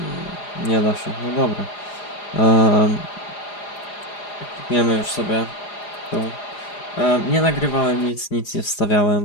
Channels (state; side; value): late; right; 4.9 ms